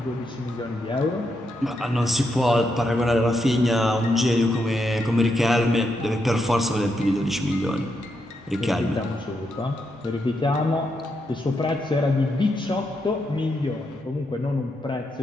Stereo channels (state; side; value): normal; both; correlation 0.81